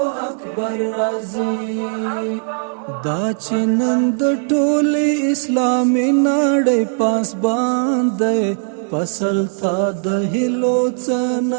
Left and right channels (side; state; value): left; silent; digital silence